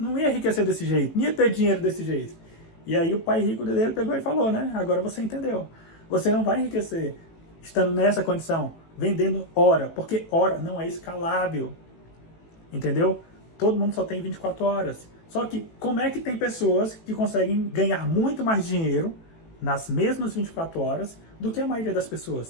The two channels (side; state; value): right; late; 18 ms